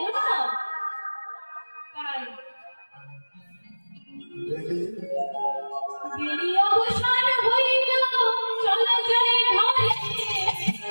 না। তাই দেরি অবসান হইল, চলো যাই ঘরে।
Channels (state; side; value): inverted; both; correlation -1.00